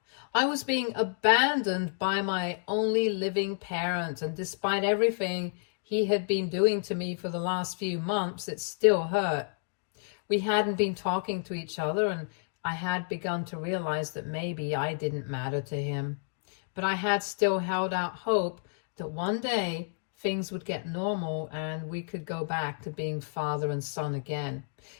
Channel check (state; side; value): silent; right; digital silence